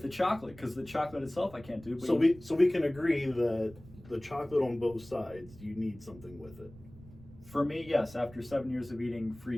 the chocolate because the chocolate itself I can't do. But So we can agree that the chocolate on both sides, you need something with it. for me, yes. After 7 years of eating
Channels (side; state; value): right; noise; rumble, 20 dB below the sound